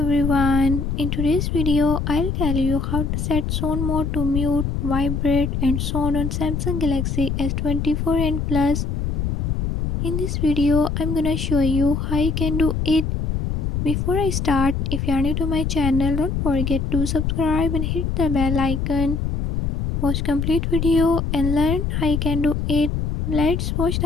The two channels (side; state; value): left; noise; rumble, 1 dB below the sound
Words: everyone. In today's video, I'll tell you how to set sound mode to mute, vibrate and sound on Samsung Galaxy S24 and Plus. In this video, I'm gonna show you how you can do it. Before I start, if you are new to my channel, don't forget to subscribe and hit the bell icon. Watch complete video and learn how you can do it. Let's watch